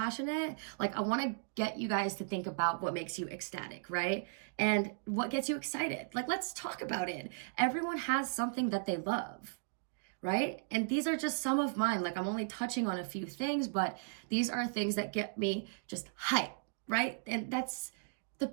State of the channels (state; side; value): silent; left; digital silence